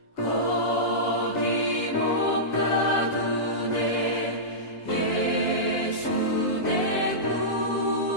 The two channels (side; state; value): right; late; 7.2 ms